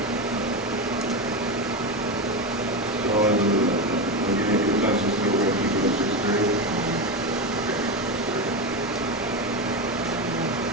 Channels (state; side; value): normal; both; correlation 0.15